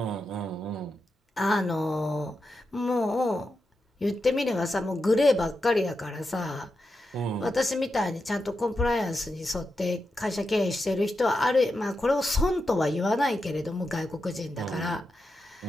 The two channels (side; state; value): both; normal; correlation 0.88